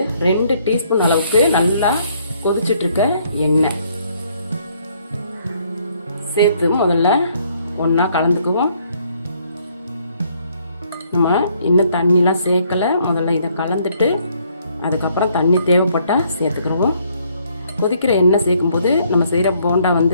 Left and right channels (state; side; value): inverted; both; correlation -0.67